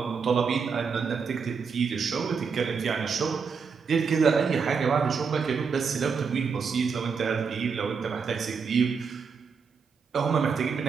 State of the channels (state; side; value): quieter; left; 5.7 dB